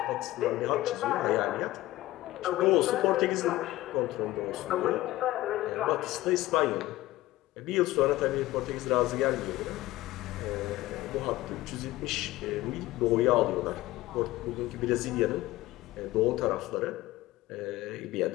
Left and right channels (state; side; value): quieter; right; 17.1 dB